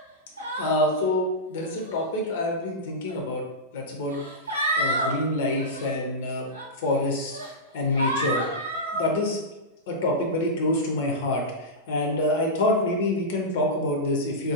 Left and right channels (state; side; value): normal; both; correlation -0.13